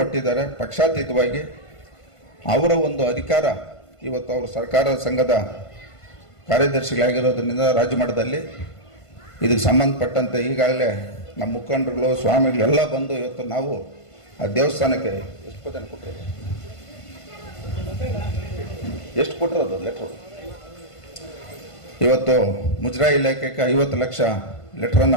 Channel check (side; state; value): right; late; 1.5 ms